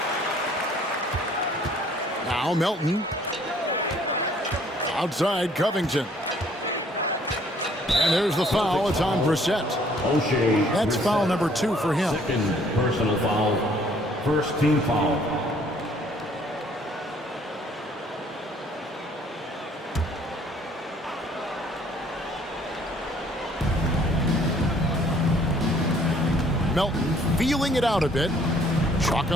Now Melton. Outside Covington. And there's the foul. It's on Brissett. That's foul number 2 for him. Second personal foul. First team foul. Melton feeling it out a bit. Chalk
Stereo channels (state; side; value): normal; both; correlation 0.60